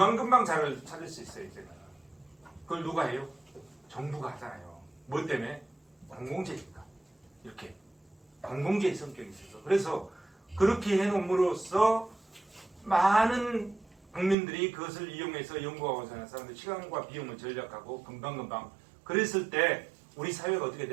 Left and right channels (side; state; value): left; drops out; at 14.4 s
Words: 잘 찾을 수 있어요, 이제는. 그걸 누가 해요? 정부가 하잖아요. 뭐 때문에? 공공재니까. 이렇게. 공공재의 성격이 있어서. 그래서 그렇게 해놓음으로써 많은 국민들이 그것을 이용해서 연구하고 사는 사람들 시간과 비용을 절약하고 금방금방 그랬을 때 우리 사회가 어떻게